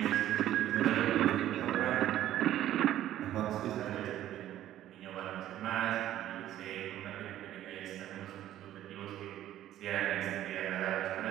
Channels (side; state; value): left; quieter; 12.8 dB